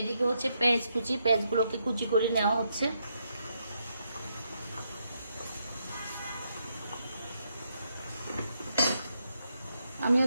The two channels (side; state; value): both; inverted; correlation -0.78